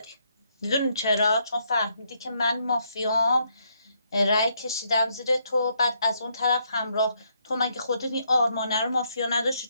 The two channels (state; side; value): inverted; both; correlation -0.74